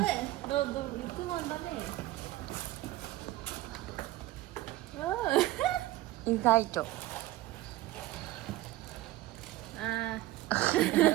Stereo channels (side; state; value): left; quieter; 16.8 dB